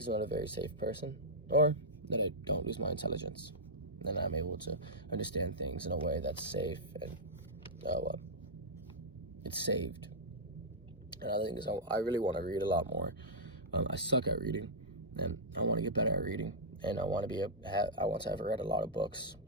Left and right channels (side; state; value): both; normal; correlation -0.10